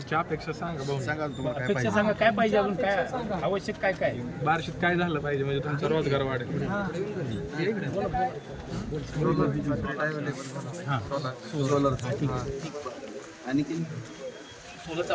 अपेक्षा सांगा भाऊ. सांगा तुम्हाला काय अपेक्षा सांगा काय पाहिजे अजून काय आवश्यक काय काय बार्शीत काय झालं पाहिजे म्हणजे तुमचा रोजगार वाढेल. सोलर आणखी सोलरचं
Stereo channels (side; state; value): both; identical; correlation 1.00